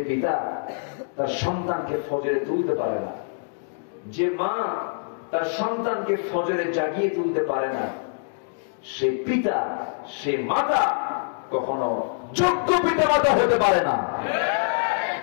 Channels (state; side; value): silent; right; digital silence